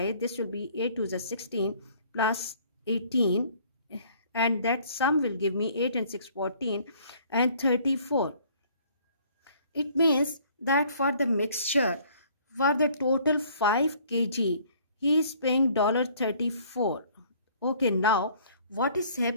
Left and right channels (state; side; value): inverted; both; correlation -0.57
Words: This will be 8 to the 16 plus 18, and that sum will give me 8 and 6 14 and 34. It means that for the mixture, for the total 5 kg, he is paying $34. Okay, now what is